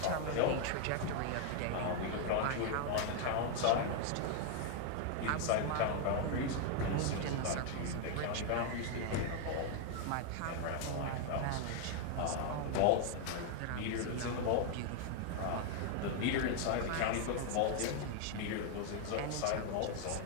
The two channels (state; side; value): different; both; correlation 0.00